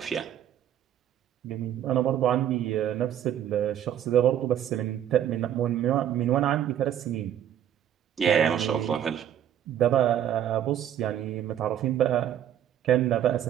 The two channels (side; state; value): left; quieter; 10.4 dB